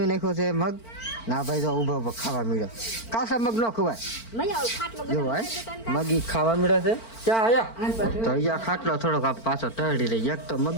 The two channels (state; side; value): late; right; 4.4 ms